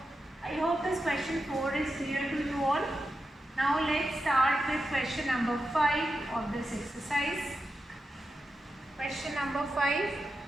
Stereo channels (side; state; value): both; normal; correlation 0.89